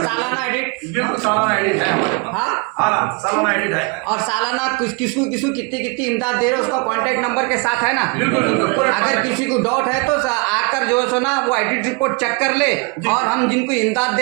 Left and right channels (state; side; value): quieter; left; 31.5 dB